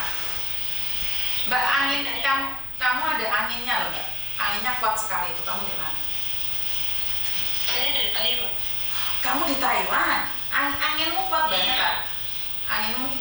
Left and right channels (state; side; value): noise; right; rumble, 20 dB below the sound